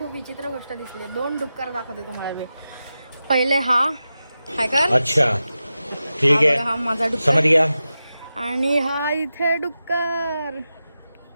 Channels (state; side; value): inverted; both; correlation -0.92